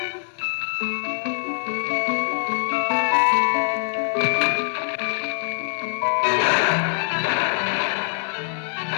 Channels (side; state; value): right; silent; digital silence